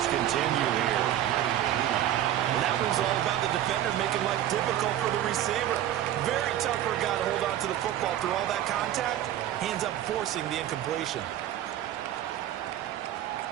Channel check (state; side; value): quieter; left; 12.1 dB